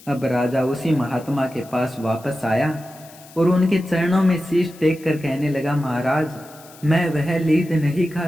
अब राजा उसी महात्मा के पास वापस आया और उनके चरणों में शीश टेक कर कहने लगा, महाराज, मैं वह लीद नहीं खा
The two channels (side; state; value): left; noise; hiss, 22 dB below the sound